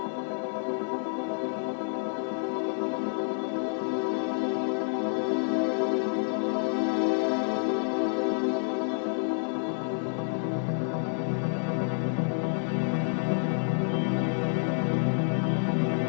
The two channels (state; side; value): silent; right; 59 dB below the other